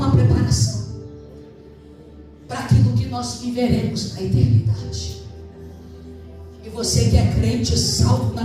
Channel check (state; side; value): identical; both; correlation 1.00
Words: preparação para aquilo que nós viveremos na eternidade. E você que é crente, salvo na